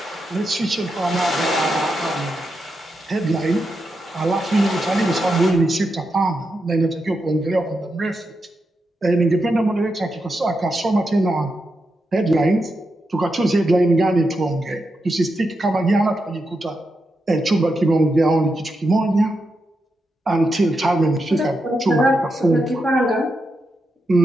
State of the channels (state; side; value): normal; both; correlation 0.86